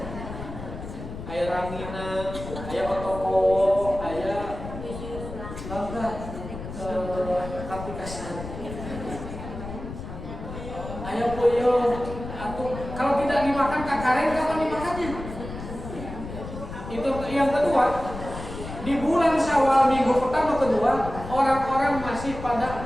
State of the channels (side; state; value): left; noise; rumble, 10 dB below the sound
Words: Ayah ranginan, ayah otoko, ayah aplikasi. Ya boyo, kalau tidak dimakan kakareng kapan dimakannya? Itu yang kedua. Di bulan Syawal minggu pertama kedua, orang-orang masih